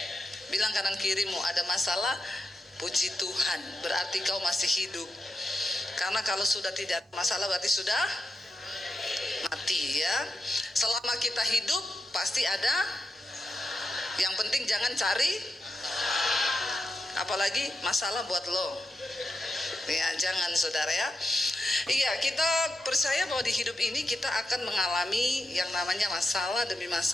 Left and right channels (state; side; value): normal; both; correlation 0.86